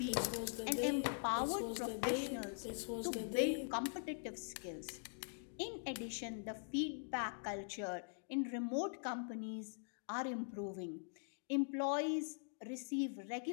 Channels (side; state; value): right; silent; digital silence